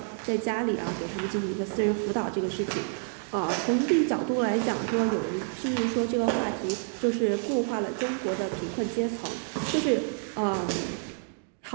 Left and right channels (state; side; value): silent; left; 59 dB below the other